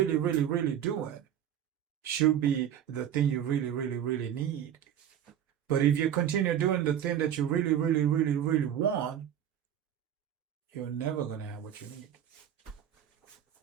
really, really doing should be the thing you really, really, really need. But if you continue doing the thing that you really, really, really, really want, you're never going to have what you need.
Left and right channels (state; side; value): quieter; left; 10.0 dB